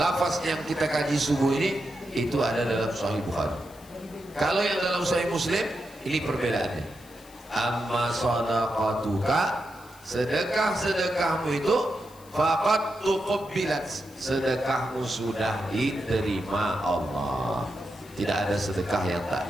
yang kita kaji subuh ini itu ada dalam Sahih Bukhari. Kalau yang dalam Sahih Muslim ini perbedaannya. Amma sadaqatuka, sedekah-sedekahmu itu faqad tuqabbilat, sedekahmu sudah diterima Allah. Tidak ada sedekah yang tak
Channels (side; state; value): left; noise; hiss, 24 dB below the sound